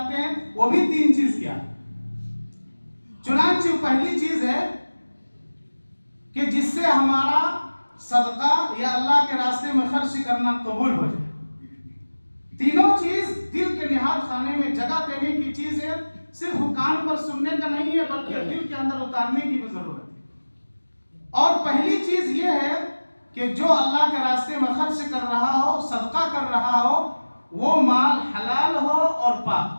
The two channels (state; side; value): inverted; both; correlation -1.00